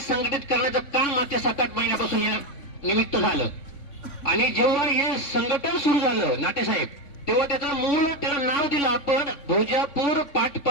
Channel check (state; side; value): late; right; 3.5 ms